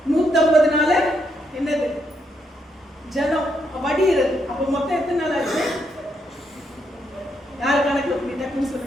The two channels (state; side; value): normal; both; correlation 0.77